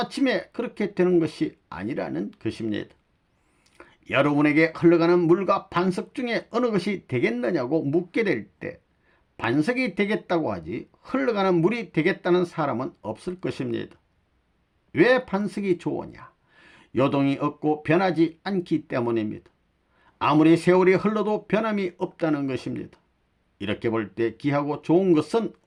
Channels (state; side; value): identical; both; correlation 1.00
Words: 그렇게 되는 것이 아니라는 것입니다. 여러분에게 흘러가는 물과 반석 중에 어느 것이 되겠느냐고 묻게 될 때 반석이 되겠다고 하지 흘러가는 물이 되겠다는 사람은 없을 것입니다. 왜 반석이 좋으냐? 요동이 없고 변하지 않기 때문입니다. 아무리 세월이 흘러도 변함이 없다는 것입니다. 이렇게 볼 때 귀하고 좋은 것은